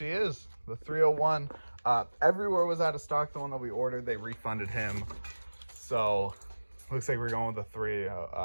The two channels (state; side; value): inverted; both; correlation -1.00